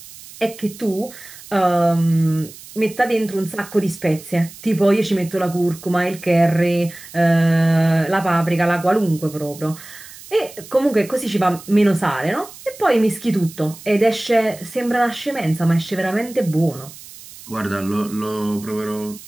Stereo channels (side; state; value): right; noise; hiss, 18 dB below the sound